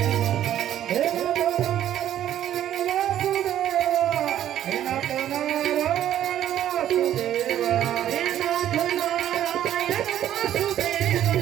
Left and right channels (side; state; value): left; quieter; 11.5 dB